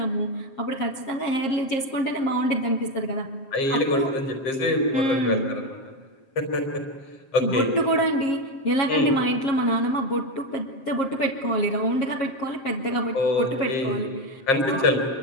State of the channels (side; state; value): right; late; 7.5 ms